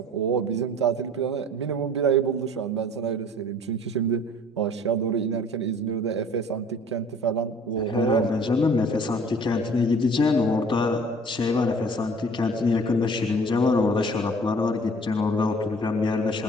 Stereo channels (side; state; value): both; normal; correlation 0.50